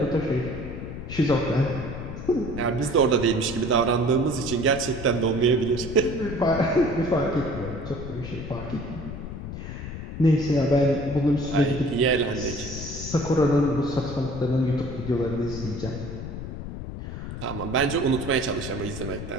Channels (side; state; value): left; noise; rumble, 8 dB below the sound